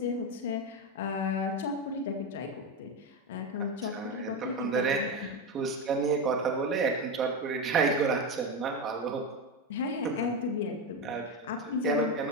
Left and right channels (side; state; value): both; normal; correlation 0.14